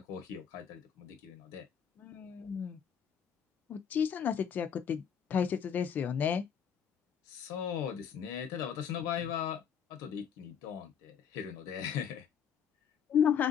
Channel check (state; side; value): quieter; right; 7.9 dB